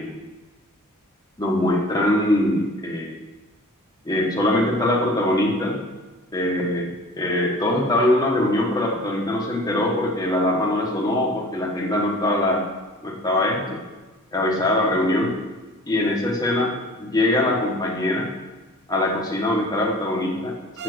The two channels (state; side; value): normal; both; correlation 0.44